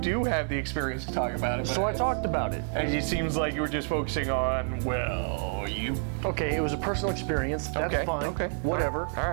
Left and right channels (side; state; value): left; silent; 59 dB below the other